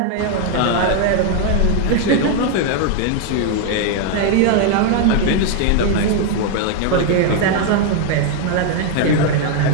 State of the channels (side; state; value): both; different; correlation 0.00